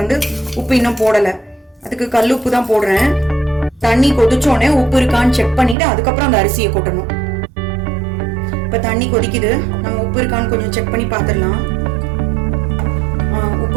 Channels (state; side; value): drops out; left; at 5.8 s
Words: வந்து உப்பு இன்னும் போடல, அதுக்கு கல் உப்பு தான் போடுறேன். தண்ணி கொதிச்சோடனே உப்பு இருக்கான்னு செக் பண்ணிட்டு அதுக்கப்புறம் அந்த அரிசியை கொட்டணும். இப்ப தண்ணி கொதிக்குது, நம்ம உப்பு இருக்கான்னு கொஞ்சம் செக் பண்ணி பாத்துடலாம். உப்பு